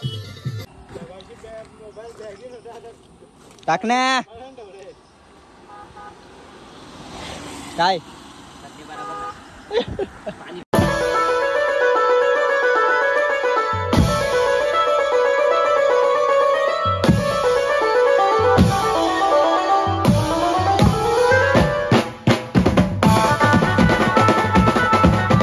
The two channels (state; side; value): identical; both; correlation 1.00